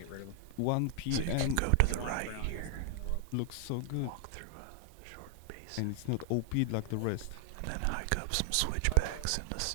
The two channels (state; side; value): different; both; correlation 0.00